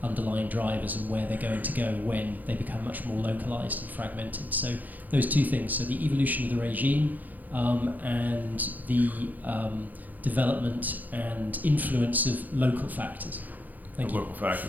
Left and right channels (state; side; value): late; left; 0.082 ms